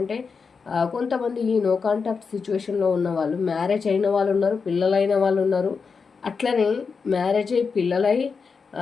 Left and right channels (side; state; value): right; quieter; 5.3 dB